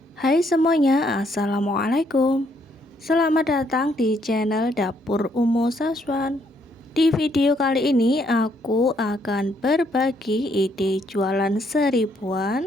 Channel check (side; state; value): both; normal; correlation 0.71